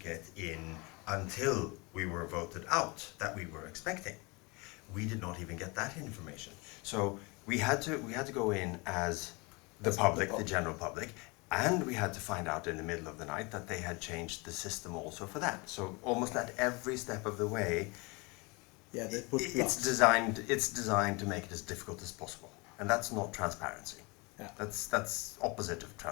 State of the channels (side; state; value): right; quieter; 27.6 dB